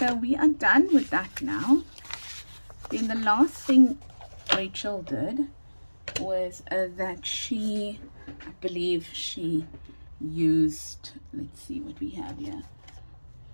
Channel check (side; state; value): both; inverted; correlation -1.00